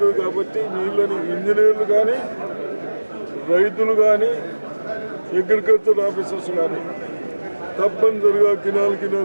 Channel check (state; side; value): inverted; both; correlation -1.00